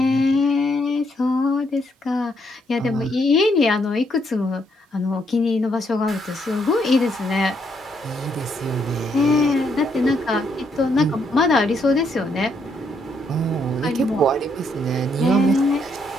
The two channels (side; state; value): both; normal; correlation 0.74